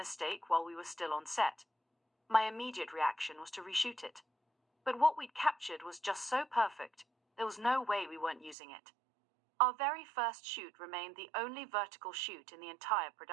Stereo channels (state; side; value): drops out; left; at 8.6 s